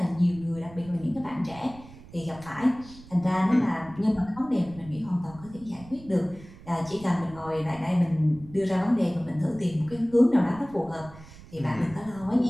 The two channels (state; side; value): noise; right; rumble, 19 dB below the sound